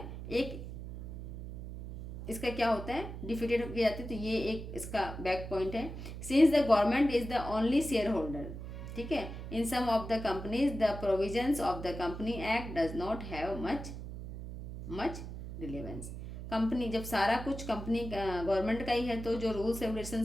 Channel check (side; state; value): right; noise; hum, 9 dB below the sound